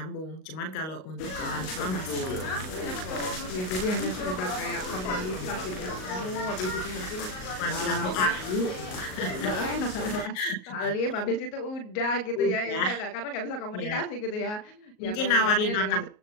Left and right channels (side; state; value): right; late; 38 ms